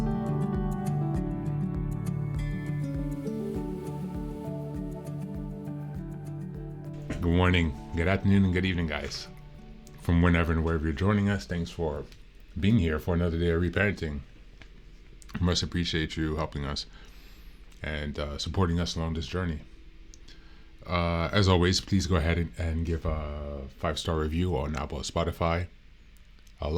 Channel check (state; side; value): identical; both; correlation 1.00